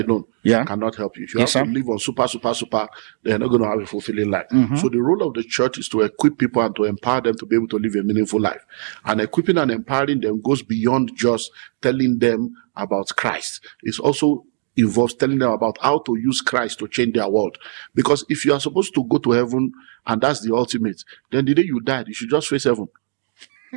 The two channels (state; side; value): silent; left; digital silence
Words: cannot help you. If you have to live on super, they're not going to have a fulfilling life. So the role of the church is to equip people and to empower them to be able to live a meaningful life. And equipping and empowering them goes beyond just telling them about Christ. It also involves telling them about how to use Christ to change their world. Because if you are supposed to go to heaven and that's the ultimate, then the day you died, you should just face heaven.